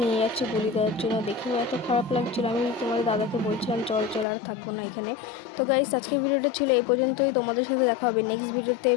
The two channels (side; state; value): right; drops out; at 4.2 s